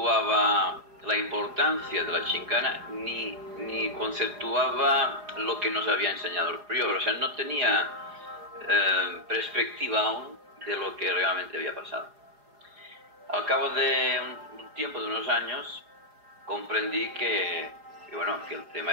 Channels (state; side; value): late; left; 4.8 ms